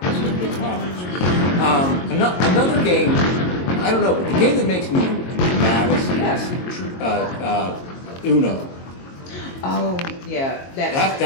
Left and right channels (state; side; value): late; right; 22 ms